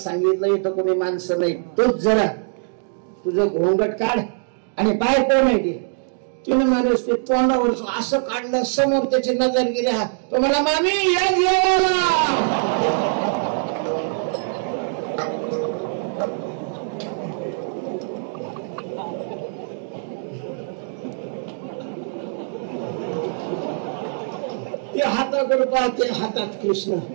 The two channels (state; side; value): silent; left; digital silence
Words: इथं कोणी माणसं नाही, तोच जरा तुझं घोंगट काढ आणि पाय कोण आहे ते. तिने महाराज ते तोंडावरच असं काढलं, समोर त्याची नजर गेली. हा तो मला मामी या जेवायला. हाताकडे पाहते, हातात कृष्ण,